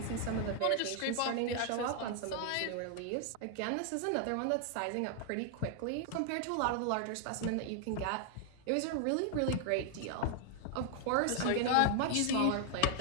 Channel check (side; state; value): both; different; correlation 0.00